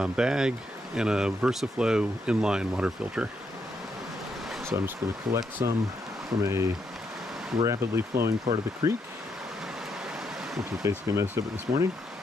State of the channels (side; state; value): both; normal; correlation 0.79